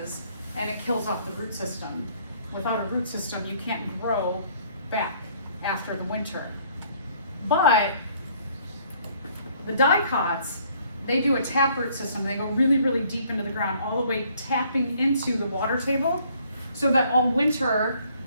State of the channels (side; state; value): both; inverted; correlation -0.61